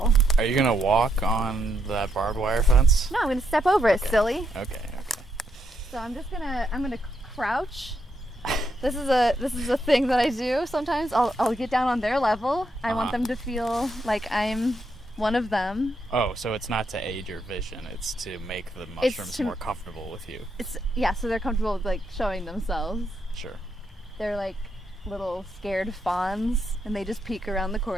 Are you gonna walk on that barbed wire fence? No, I'm gonna step over it, Okay. silly. Okay. So I'm gonna crouch. This is a thing that I do sometimes. I'll get down on their level. I want them to feel like I'm one of them. Oh, so it's not to aid your vision, it's to make the mushrooms more comfortable with you. So they're comfortable with like showing themselves. Sure. They're like little scared fawns, and they just peek around the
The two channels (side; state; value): both; normal; correlation 0.79